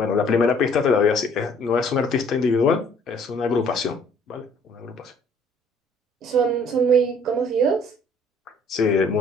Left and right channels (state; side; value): normal; both; correlation 0.58